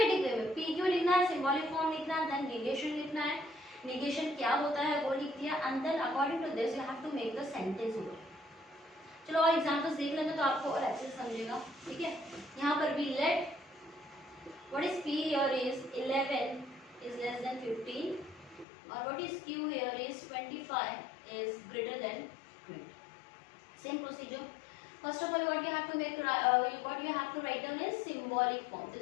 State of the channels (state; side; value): drops out; right; at 18.7 s